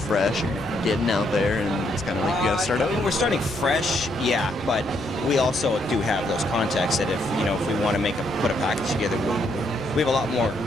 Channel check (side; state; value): left; noise; rumble, 20 dB below the sound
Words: you're getting out there, and it's kind of like you got to start over? We're starting fresh, yeah, but we also do have those contacts that if we want to put a package together, we have a lot more,